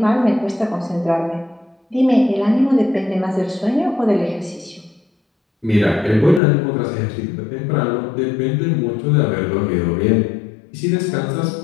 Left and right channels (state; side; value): drops out; right; at 6.4 s